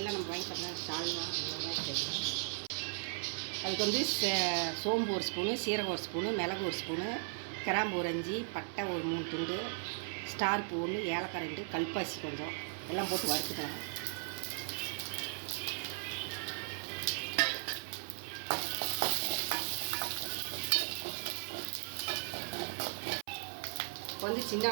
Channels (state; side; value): silent; left; 53 dB below the other